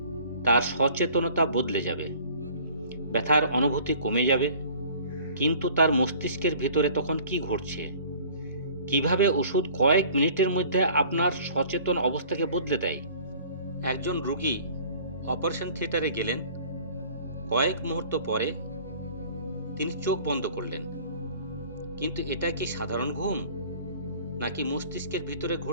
তার সচেতনতা বদলে যাবে, ব্যথার অনুভূতি কমে যাবে। কিন্তু তার মস্তিষ্কের ভিতরে তখন কি ঘটছে? কিভাবে ওষুধ কয়েক মিনিটের মধ্যে আপনার সচেতন অবস্থাকে বদলে দেয়? একজন রোগী অপারেশন থিয়েটারে গেলেন, কয়েক মুহূর্ত পরে তিনি চোখ বন্ধ করলেন। কিন্তু এটা কি সাধারণ ঘুম, নাকি মস্তিষ্কের ভিতরে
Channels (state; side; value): inverted; both; correlation -0.49